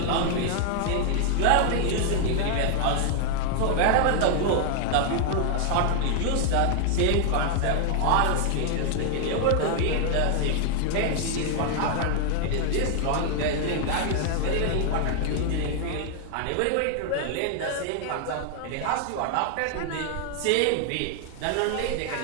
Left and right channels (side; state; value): both; different; correlation 0.00